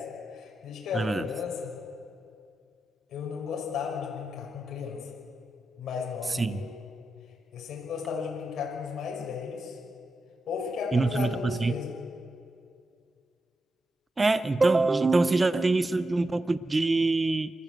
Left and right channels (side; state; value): both; normal; correlation 0.88